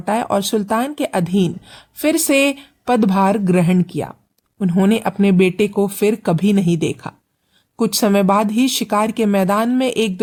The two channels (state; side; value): identical; both; correlation 1.00